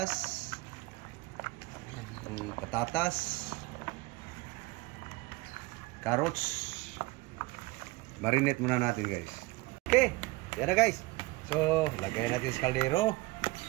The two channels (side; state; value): left; quieter; 21.9 dB